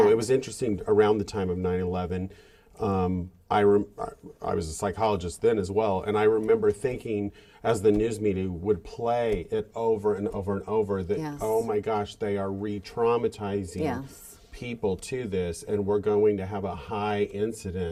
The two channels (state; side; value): identical; both; correlation 1.00